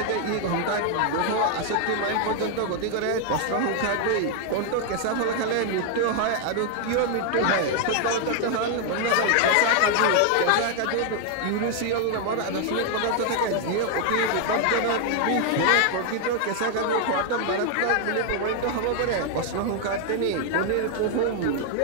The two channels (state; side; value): different; both; correlation 0.00